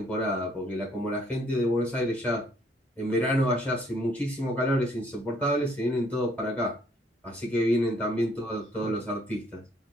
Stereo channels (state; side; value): normal; both; correlation 0.64